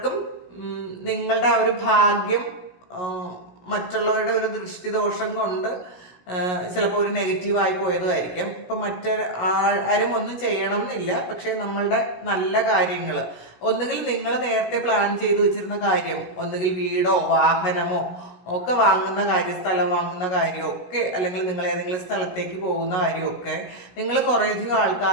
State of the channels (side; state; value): right; late; 16 ms